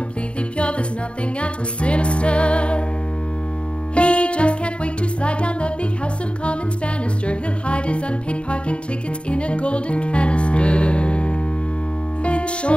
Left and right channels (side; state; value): right; late; 0.058 ms